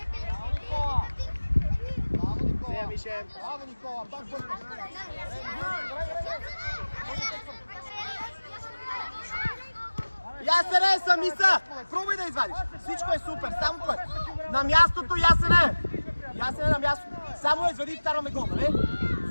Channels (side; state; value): both; inverted; correlation -1.00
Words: Никола! Браво, Никола! Нея, Мише. Браво, Никола! Пак бързо! Ясене, сами са! Пробуй да извадиш. Всичко е супер, само път. На мястото, Ясене! Ясене на мястото. Само я извади и вкарваме гол, нали?